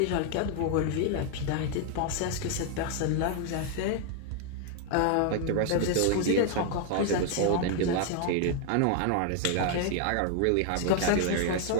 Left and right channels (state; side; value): different; both; correlation 0.00